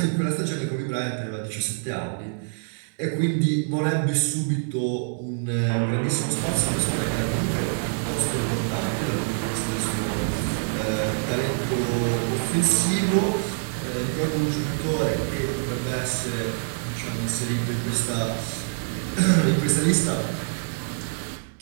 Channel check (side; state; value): left; silent; digital silence